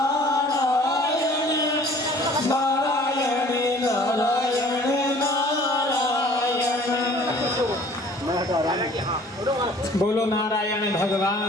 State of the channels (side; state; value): both; normal; correlation 0.52